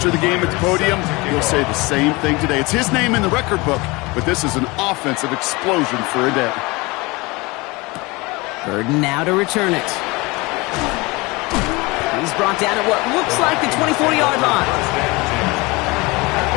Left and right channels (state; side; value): quieter; right; 24.3 dB